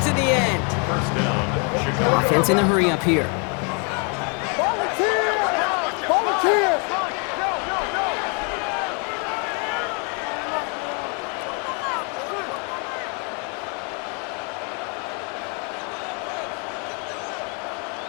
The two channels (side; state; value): right; quieter; 36.4 dB